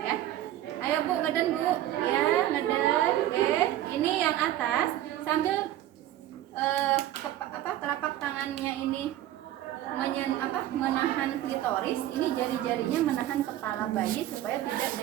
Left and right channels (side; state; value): left; quieter; 13.3 dB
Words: ya. Ayo Bu, ngeden Bu ya, ngeden. Oke, ini yang atas sambil telapak tangannya ini menahan klitoris, ini jari-jarinya menahan kepala bayi supaya tidak